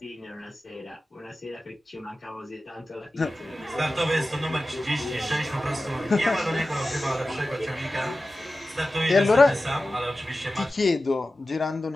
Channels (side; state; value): both; normal; correlation 0.95